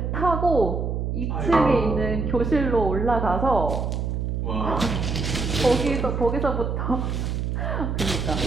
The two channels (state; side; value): noise; right; hum, 1 dB below the sound